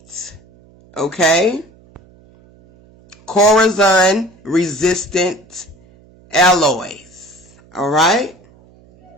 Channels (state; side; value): noise; right; hum, 28 dB below the sound